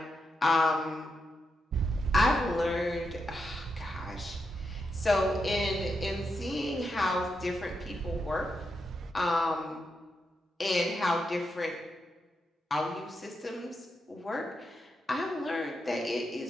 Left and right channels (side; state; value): both; normal; correlation 0.84